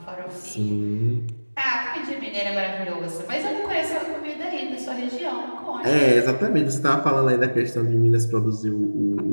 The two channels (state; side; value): inverted; both; correlation -1.00